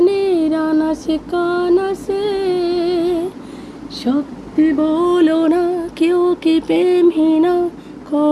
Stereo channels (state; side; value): identical; both; correlation 1.00